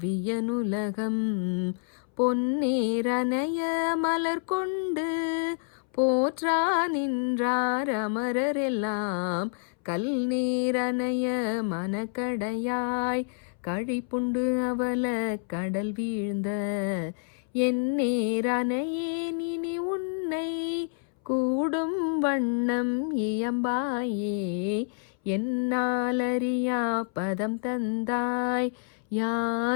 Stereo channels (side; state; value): right; silent; 59 dB below the other